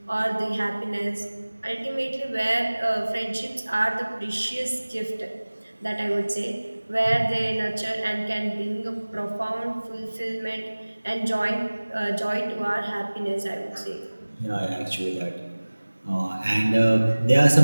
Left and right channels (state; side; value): inverted; both; correlation -1.00